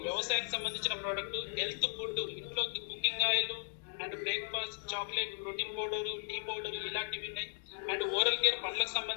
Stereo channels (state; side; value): silent; right; digital silence